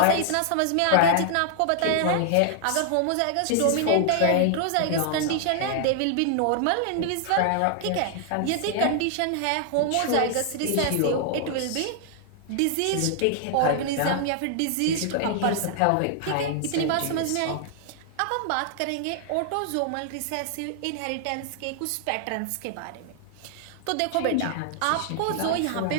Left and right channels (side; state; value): both; different; correlation 0.00